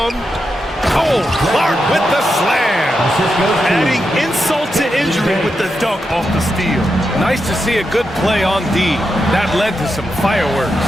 Clark with the slam. Adding insult to injury with the dunk off the steal. Nice to see a good play on D. That led to some fireworks.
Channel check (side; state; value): both; normal; correlation 0.86